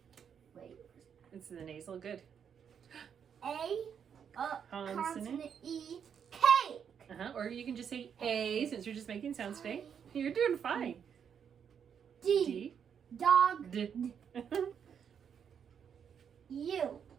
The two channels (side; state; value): left; quieter; 7.7 dB